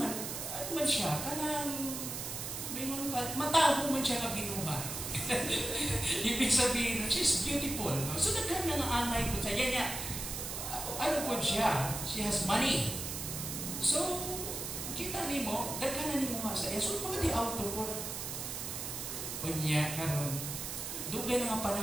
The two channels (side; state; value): right; noise; hiss, 5 dB below the sound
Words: man siya, kanang, may mga mataho man siya na binuha. Ibig sabihin, she's beautiful. No? So, nagkana ng anay po siya. Yan, ano po siya? She has money. So, kita ni mo, nagkana ni mo nga sa iya. So, mga di auto po. O niya, karon dugay na nga